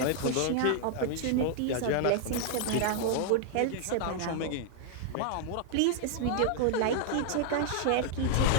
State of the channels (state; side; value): different; both; correlation 0.00